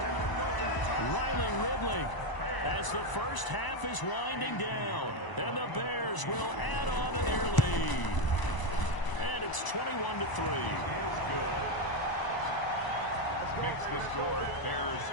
Riley Ridley as the first half is winding down. And the Bears will add on to their lead. And it's 21-3. Is good. Makes the score Bears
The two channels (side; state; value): right; late; 1.0 ms